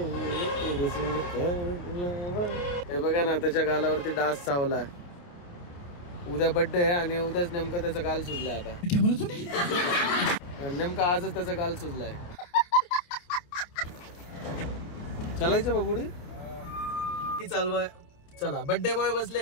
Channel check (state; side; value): late; right; 29 ms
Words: तेरे संग प्यार. हे बघा ना, त्याच्या गालावरती डास चावला. उद्या बर्थडे आहे आणि उद्याच नेमकं त्याचा गाल सुजलाय. आता नेमका आजच त्याचा गाल सुजलाय. चालायचं बाबुडी चालवाय. चला, बर्थडे बॉय बसले